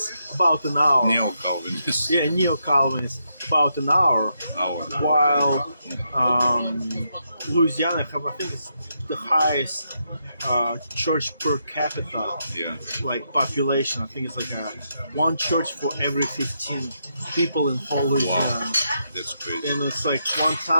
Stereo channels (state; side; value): inverted; both; correlation -0.80